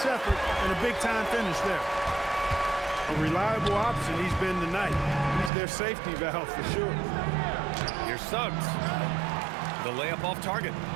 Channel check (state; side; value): drops out; left; at 5.5 s